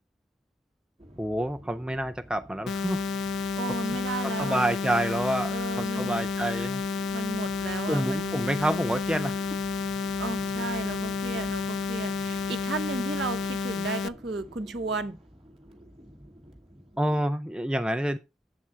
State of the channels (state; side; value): normal; both; correlation 0.74